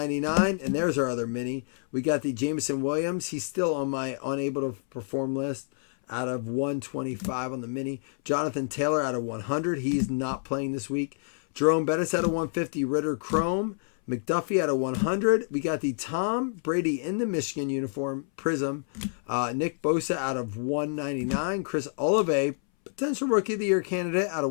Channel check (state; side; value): silent; right; 59 dB below the other